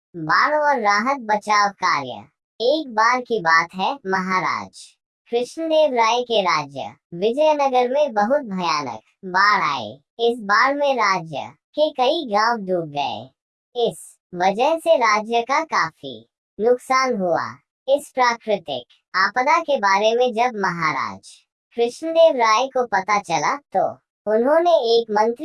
बाढ़ और राहत बचाव कार्य। एक बार की बात है, महाराज कृष्णदेव राय के राज्य विजयनगर में बहुत भयानक बाढ़ आई। इस बाढ़ में राज्य के कई गांव डूब गए। इस वजह से राज्य का काफी नुकसान हुआ। इस प्राकृतिक आपदा के बारे में जब महाराज कृष्णदेव राय को पता चला तो उन्होंने एक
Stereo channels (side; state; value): both; identical; correlation 1.00